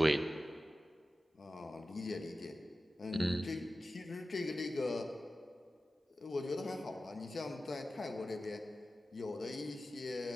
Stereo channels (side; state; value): both; normal; correlation 0.94